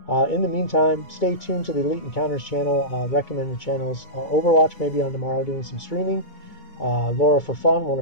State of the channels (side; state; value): right; late; 2.2 ms